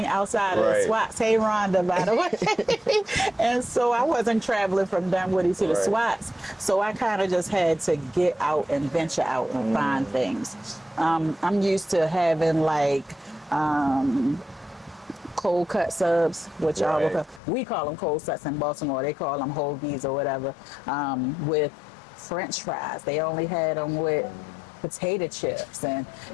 outside of the SWATs. Hey, Rhonda, by the way. And so I wasn't traveling from Dunwoody to the SWATs. So I kind of just had to get out and venture out and find things. I'm used to having like cold cut subs, which we call them cold cuts in Baltimore. They call them hoagies or whatever, with French fries. They only had them with potato chips, and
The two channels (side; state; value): right; drops out; at 17.4 s